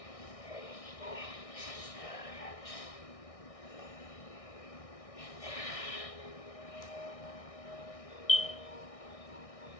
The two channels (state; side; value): late; right; 1.6 ms